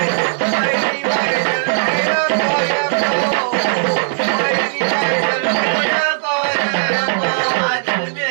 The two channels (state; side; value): silent; left; 68 dB below the other